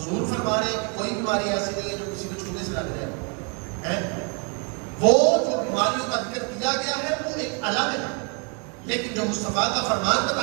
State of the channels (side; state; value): left; quieter; 35.5 dB